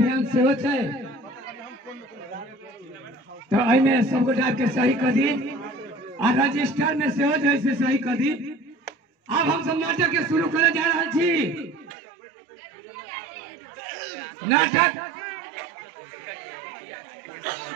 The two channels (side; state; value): left; drops out; at 12.0 s